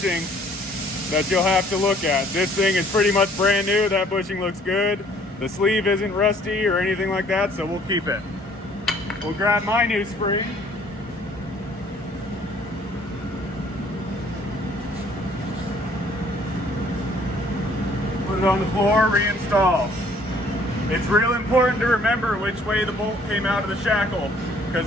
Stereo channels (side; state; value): both; normal; correlation 0.58